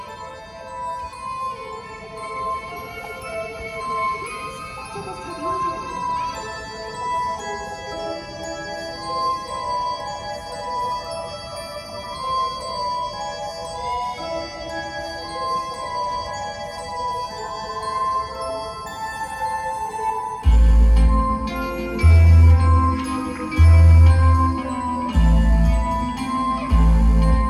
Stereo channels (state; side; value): identical; both; correlation 1.00